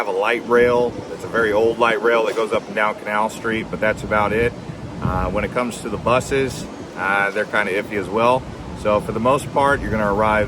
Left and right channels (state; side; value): identical; both; correlation 1.00